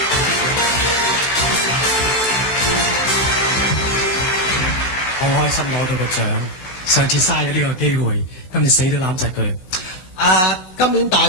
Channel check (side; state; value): right; late; 16 ms